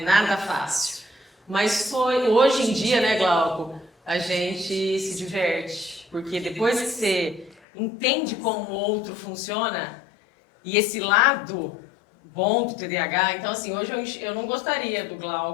Nada fácil. Mas hoje em dia, né, Glauco, a gente se diverte. Porque depois que você entende como o outro funciona, e esse lado bom do TDAH, então assim, hoje eu não gostaria do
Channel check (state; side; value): drops out; right; at 7.6 s